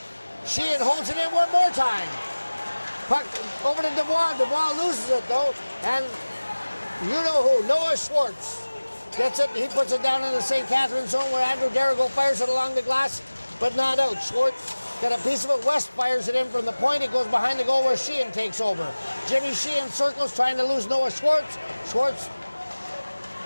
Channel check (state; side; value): inverted; both; correlation -1.00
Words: Sheehan holds it in one more time. Puck over to Dubois. Dubois loses it, though. And you know who, Noah Schwartz gets it. He puts it down in the St. Catharines zone where Andrew Darrigo fires it along the glass, but not out. Schwartz got a piece of it. West fires it in from the point. It goes behind the goal where Sheehan takes over. Jimmy Sheehan circles, trying to lose Noah Schwartz. Schwartz.